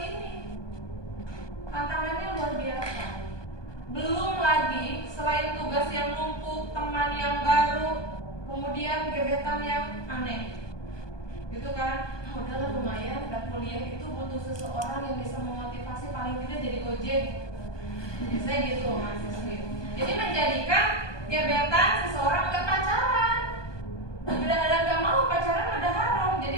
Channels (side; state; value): right; late; 1.2 ms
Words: ini. Tantangannya luar biasa. Belum lagi selain tugas yang numpuk, teman yang baru, kemudian gebetan yang aneh. Gitu kan? Udahlah lumayan, dan kuliah itu butuh seseorang yang bisa memotivasi paling tidak jadi gojek. Jadi saya gitu mahasiswi. Jadi menjadikan gebetan seseorang gak pacaran. Udah ada gak mau pacaran udah haram. Jadi